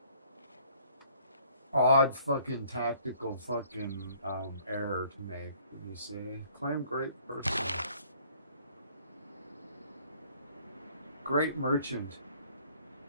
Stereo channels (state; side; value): inverted; both; correlation -0.60